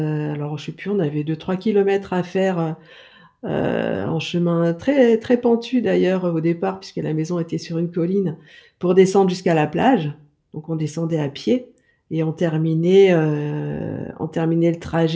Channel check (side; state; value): both; identical; correlation 1.00